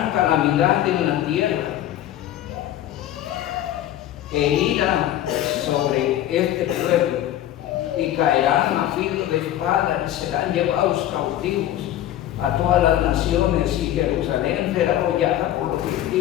calamidad en la tierra e ira sobre este pueblo, y caerán a filo de espada y serán llevados cautivos a todas las naciones, y Jerusalén será hollada por los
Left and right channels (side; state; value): right; quieter; 12.6 dB